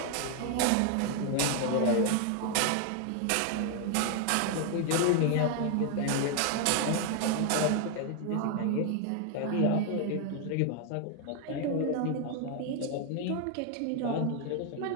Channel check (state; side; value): different; both; correlation 0.00